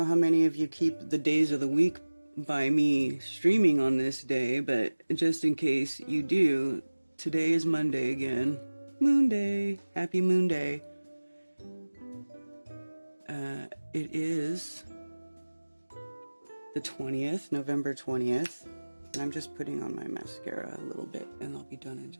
how many of you keep the days of the week by me streaming on this day, but just in case you do, today is Monday again. Moonday. Happy Moonday. It is the 20th, November 20th. And I'm just putting on my mascara a little bit, and I'll be done in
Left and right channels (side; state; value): both; inverted; correlation -1.00